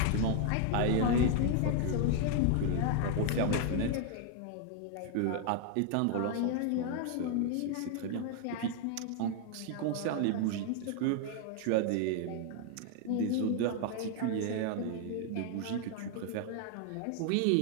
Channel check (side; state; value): both; different; correlation 0.00